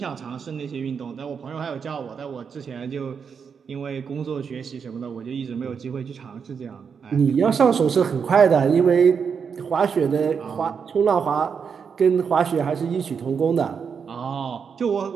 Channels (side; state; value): left; quieter; 6.4 dB